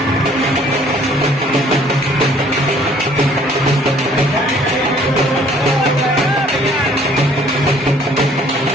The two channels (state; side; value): normal; both; correlation 0.58